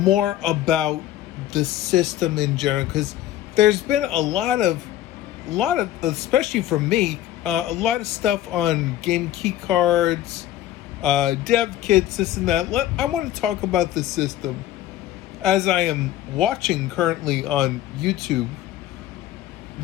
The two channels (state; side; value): quieter; right; 13.1 dB